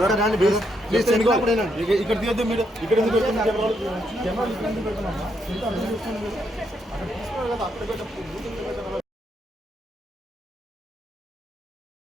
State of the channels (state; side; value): normal; both; correlation 0.77